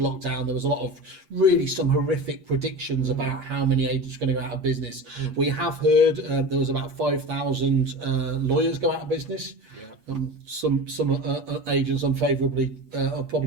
There was a lot of really some horrific predictions about how many agents are going to go out of business. We have heard there was about 5,000 lawyers go out of business. Yeah. Some agents unfavourably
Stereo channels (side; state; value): left; late; 8.6 ms